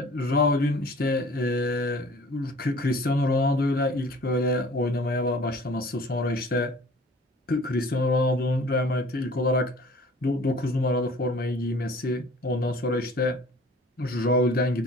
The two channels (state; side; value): normal; both; correlation 0.48